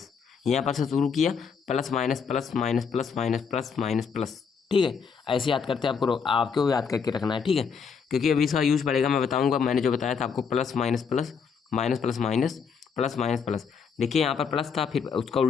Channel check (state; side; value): quieter; right; 6.2 dB